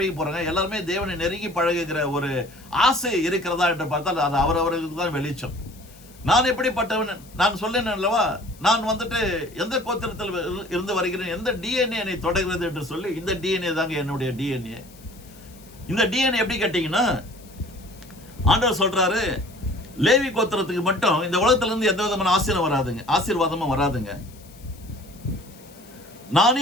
போறாங்க, எல்லாருமே தேவனை நெருங்கி பழகுகிற ஒரு ஆசை இருக்கிறதா என்று பார்த்தால் அது அவரவர்களுக்கு தான் வெளிச்சம். நான் எப்படிப்பட்டவன் நான் சொல்லேன் அல்லவா, நான் வந்துட்டு எந்த கோத்திரத்தில் இருந்து வருகிறேன், எந்த டிஎன்ஏ என்னை தொடர்கிறது என்று சொல்லி, இந்த டிஎன்ஏ தாங்க என்னுடைய டிஎன்ஏ. இந்த டிஎன்ஏ எப்படி கேட்டீங்கன்னா, ஆண்டவர் சொல்றாரு லேவி கோத்திரத்துக்கு மட்டும் இந்த உலகத்துல இருந்து எந்த விதமான ஆசீர்வாதமும் வராதுங்க. நானே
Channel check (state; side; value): noise; left; hiss, 24 dB below the sound